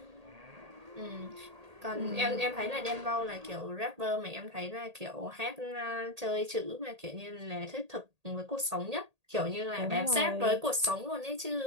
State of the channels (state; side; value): late; left; 1.8 ms